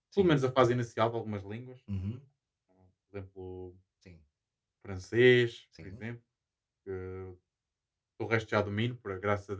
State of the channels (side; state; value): both; identical; correlation 1.00